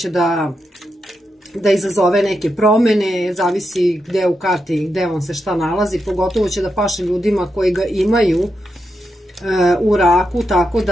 da izazove neke promene, zavisi gde u karti, gde vam se šta nalazi, pogotovo će da paše ljudima koji ga imaju u raku, tako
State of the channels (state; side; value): normal; both; correlation 0.86